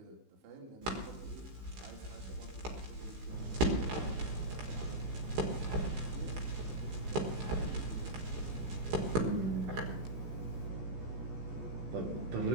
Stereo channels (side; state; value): left; late; 16 ms